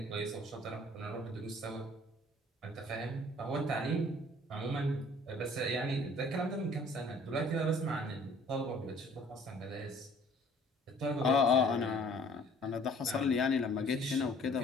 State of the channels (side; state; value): both; normal; correlation 0.55